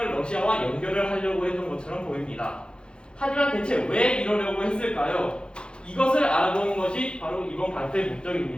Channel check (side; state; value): right; late; 0.052 ms